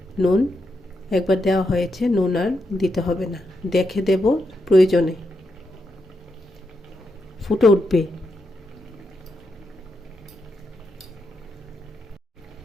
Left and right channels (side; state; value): both; normal; correlation 0.84